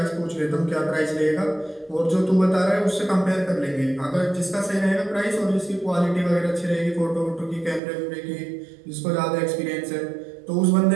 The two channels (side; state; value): left; drops out; at 7.8 s